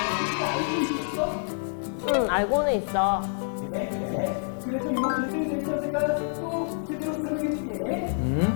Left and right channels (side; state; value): right; silent; digital silence